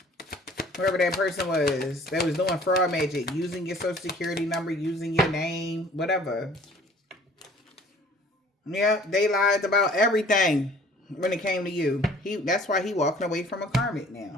Whoever that person was that was doing fraud magic, using your social security number, using your name, whatever. Yeah, they lied about everything when it came to you. That's why he walking away from a karmic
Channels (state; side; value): normal; both; correlation 0.51